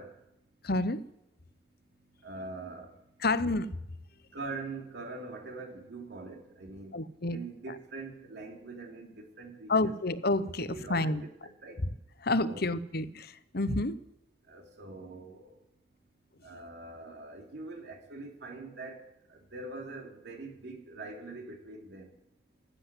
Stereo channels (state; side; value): normal; both; correlation 0.24